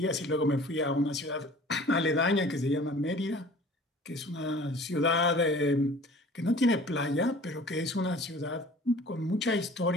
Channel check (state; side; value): normal; both; correlation 0.47